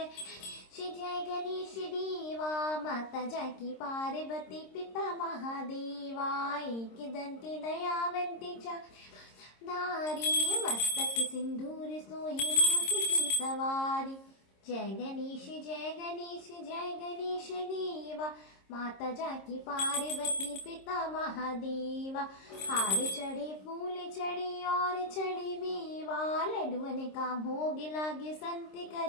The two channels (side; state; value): right; late; 26 ms